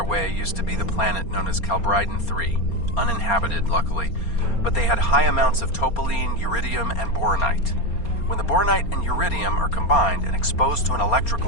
way used to be the planet known as Calbryden 3, uninhabited, luckily, but they had high amounts of topaline, uridium, and boronite. When the boronite and uridium are combined and exposed to an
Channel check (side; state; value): right; late; 4.3 ms